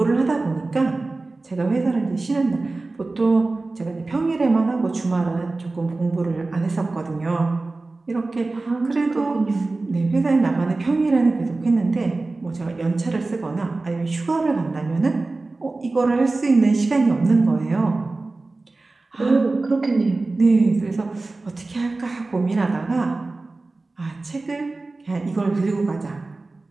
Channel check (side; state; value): left; quieter; 3.3 dB